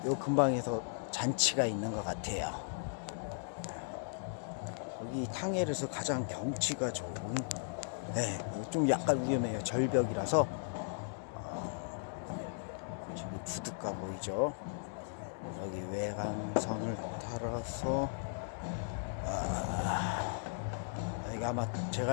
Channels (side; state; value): right; silent; digital silence